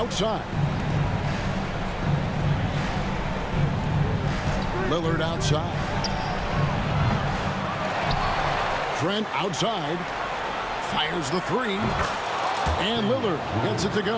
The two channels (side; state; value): both; identical; correlation 1.00